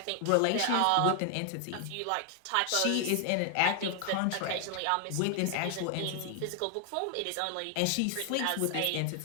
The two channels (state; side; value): different; both; correlation 0.00